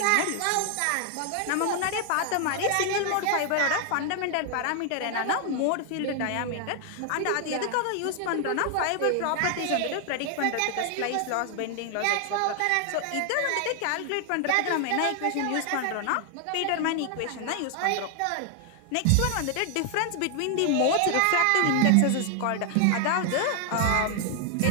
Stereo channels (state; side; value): different; both; correlation 0.00